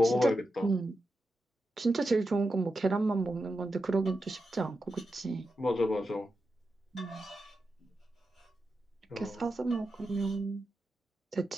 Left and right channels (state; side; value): normal; both; correlation 0.88